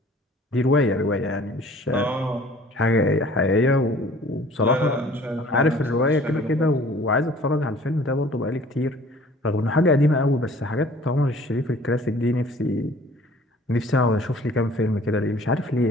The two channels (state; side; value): normal; both; correlation 0.51